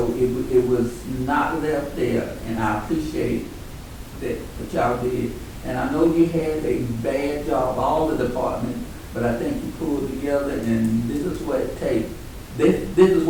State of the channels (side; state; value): both; identical; correlation 1.00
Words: it was not left there, and I appreciate that what y'all did. And I know you had a bad job, all the departments, but I think you pulled together, and this is what it takes. This is